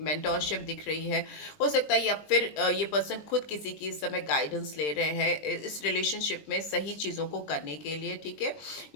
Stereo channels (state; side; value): late; right; 20 ms